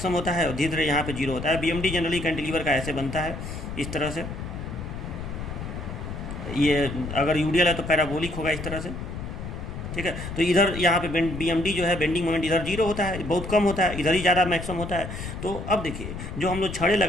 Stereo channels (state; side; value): noise; left; rumble, 8 dB below the sound